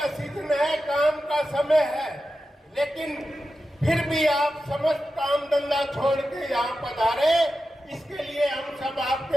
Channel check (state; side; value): normal; both; correlation 0.92